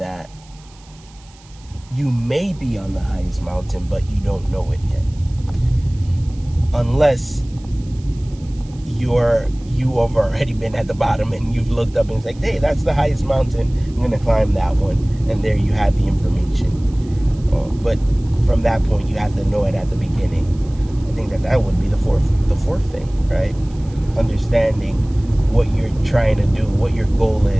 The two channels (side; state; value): right; noise; hiss, 27 dB below the sound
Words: you may be on the highest mountain, but you don't know it yet, unless you have already been at the bottom and you've looked up and it's like, hey, that's the highest mountain, I'm gonna climb that one, and there you have the information. But from that point, you have to know it at the beginning. I think that would be the fourth thing, right? Understanding what you're trying to do, what your goal